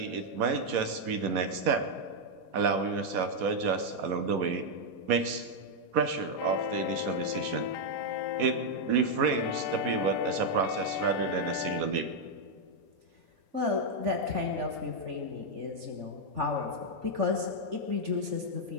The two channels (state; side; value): late; left; 4.2 ms